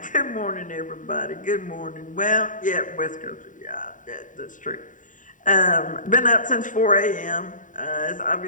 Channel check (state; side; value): late; right; 0.38 ms